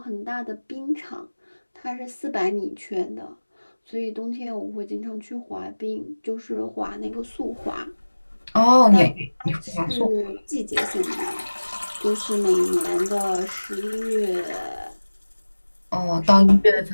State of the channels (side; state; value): both; inverted; correlation -1.00